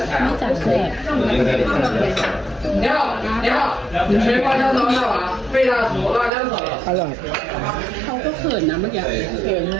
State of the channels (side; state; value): left; drops out; at 6.3 s